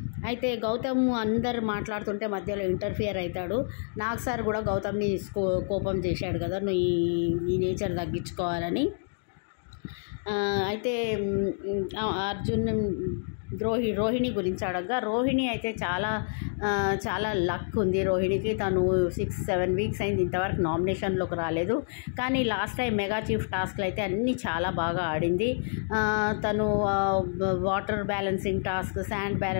అయితే గౌతమ్ అందరు మాట్లాడుతుంటే మధ్యలో ఇంటర్ఫియర్ అవుతాడు. నాగ్ సార్ కూడా గౌతమ్ని కోపం చేశాడు కదా, నువ్వు ఈ నేచర్ తగ్గించుకోవాలని. అయితే అర్జున్ రోహిణి గురించి అడగగా, రోహిణి అయితే చాలా లక్ ఉంది రోహిణికి, తను 6-7 వీక్స్ అయింది ఇంతవరకు నామినేషన్లోకి రాలేదు, కానీ లాస్ట్ టైం మెగా చీఫ్ టాస్క్లు అయితే అన్నీ చాలా బాగా ఆడింది. తను water balancing task, sand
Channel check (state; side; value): silent; right; digital silence